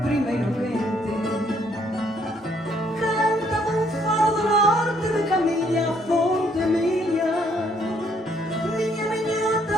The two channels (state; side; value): normal; both; correlation 0.67